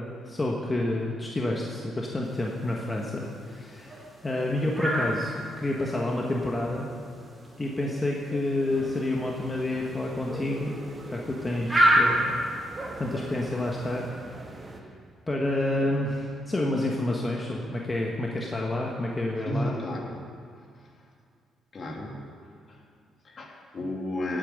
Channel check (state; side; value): normal; both; correlation 0.81